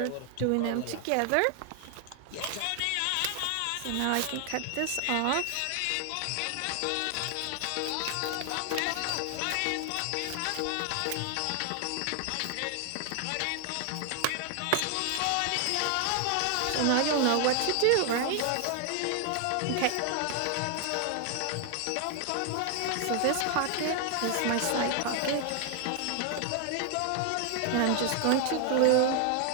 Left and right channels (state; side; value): different; both; correlation 0.00